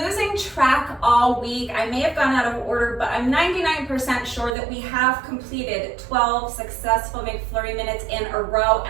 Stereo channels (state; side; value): drops out; left; at 4.5 s